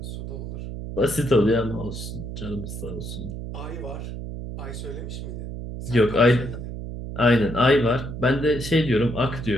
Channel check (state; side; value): noise; right; hum, 7 dB below the sound